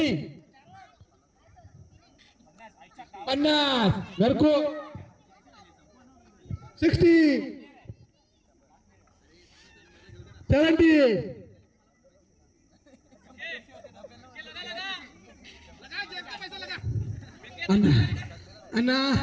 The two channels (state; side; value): identical; both; correlation 1.00